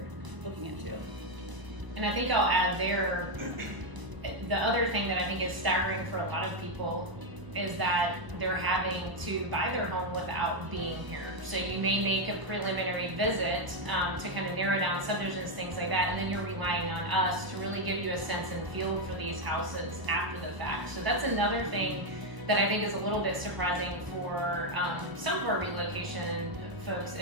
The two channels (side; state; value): left; late; 1.0 ms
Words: looking into. And I think I'll add there, the other thing that I think is staggering for a lot of people is that they're having to buy their home without being here. So you may make a preliminary visit to kind of narrow down subdivisions, things like that, and then you're relying on us to really give you a sense and feel for these houses after the fact. So that's another thing that I think is a little bit surprising for some of our relocation folks